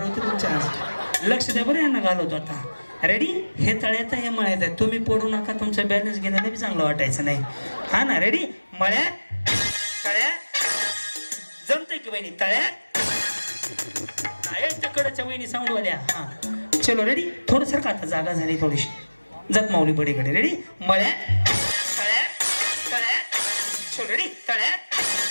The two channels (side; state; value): both; inverted; correlation -1.00